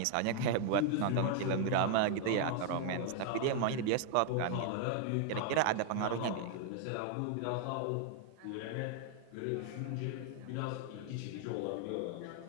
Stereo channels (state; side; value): different; both; correlation 0.00